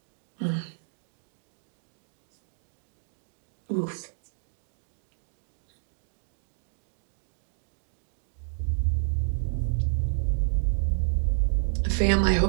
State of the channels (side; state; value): left; silent; digital silence